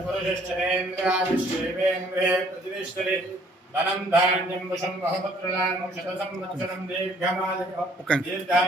पुरुषश्चरेन्द्रायुष्येवेन्द्रे प्रतिष्ठति धनं धान्यं वशं बहुपुत्रलाभं शतसंवत्सरं दीर्घमायुः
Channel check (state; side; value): normal; both; correlation 0.61